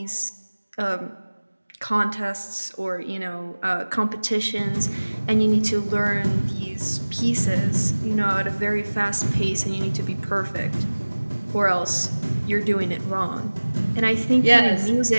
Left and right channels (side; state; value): both; inverted; correlation -1.00